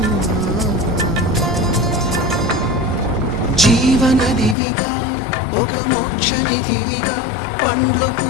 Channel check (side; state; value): right; drops out; at 4.5 s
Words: జీవనదివిగా ఒక మోక్షనిధివిగా పండ్లు